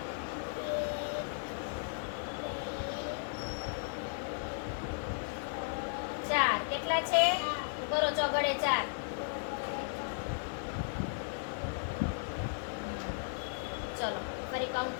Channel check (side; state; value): right; silent; digital silence